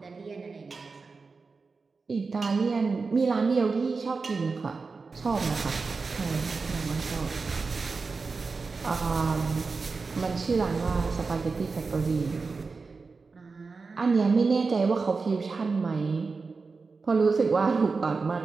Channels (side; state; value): left; quieter; 4.4 dB